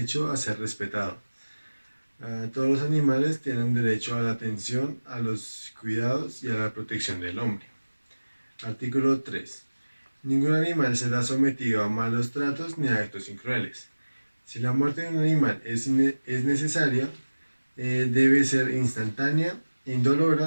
a ser respetado. Todos los animales tienen derecho a la atención, a los cuidados y a la protección del hombre. Artículo 3. Ningún animal será sometido a malos tratos ni a actos crueles. Si la muerte de un animal es necesaria, debe ser instantánea,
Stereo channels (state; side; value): inverted; both; correlation -1.00